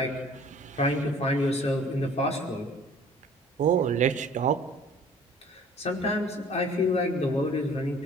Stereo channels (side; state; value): both; normal; correlation 0.51